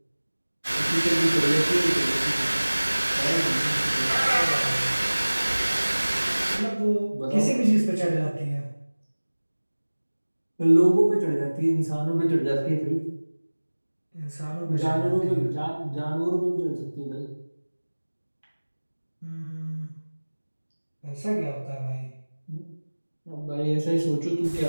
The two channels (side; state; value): both; inverted; correlation -1.00